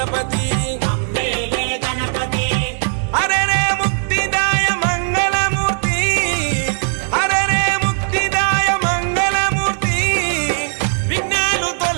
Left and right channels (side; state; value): left; silent; digital silence